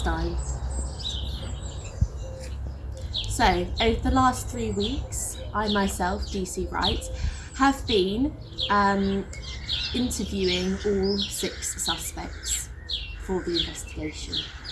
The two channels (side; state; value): both; identical; correlation 1.00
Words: So, over the last 3 weeks, I myself, DC Wright, have been interviewing all 6 suspects for the investigation.